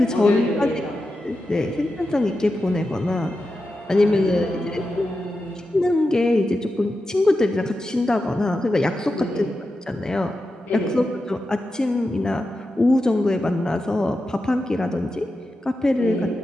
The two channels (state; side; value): normal; both; correlation 0.90